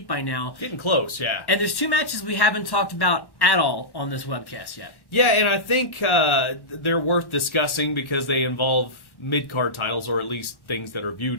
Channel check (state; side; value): late; right; 1.1 ms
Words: by now. Getting close, yeah. And there's two matches we haven't talked about at all on this webcast yet. Yeah, and I think they're worth discussing because they involve mid-card titles, or at least things that are